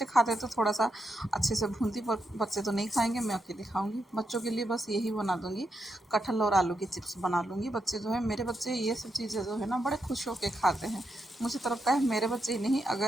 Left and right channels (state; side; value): normal; both; correlation 0.83